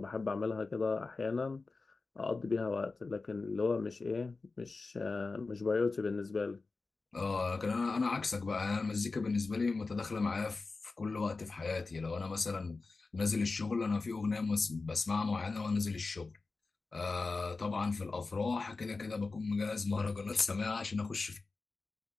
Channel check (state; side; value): quieter; right; 3.9 dB